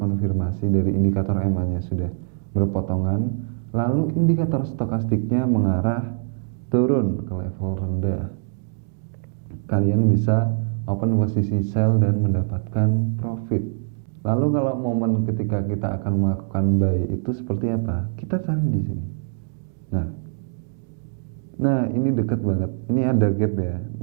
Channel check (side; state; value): left; silent; digital silence